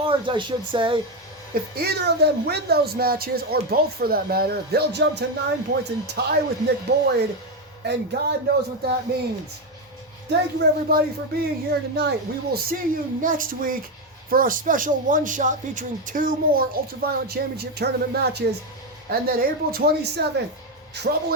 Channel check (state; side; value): normal; both; correlation 0.09